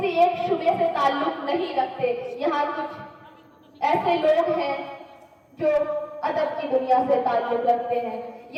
एक शुबे से ताल्लुक नहीं रखते। यहाँ कुछ ऐसे लोग हैं जो अदब की दुनिया से ताल्लुक रखते हैं,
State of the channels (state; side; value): identical; both; correlation 1.00